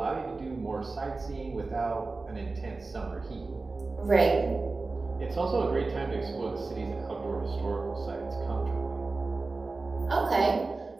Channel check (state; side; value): quieter; left; 3.7 dB